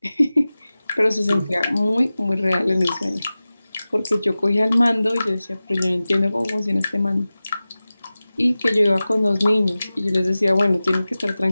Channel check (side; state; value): both; inverted; correlation -0.97